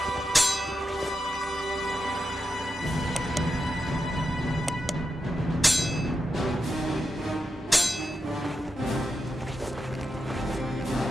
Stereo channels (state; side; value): normal; both; correlation 0.87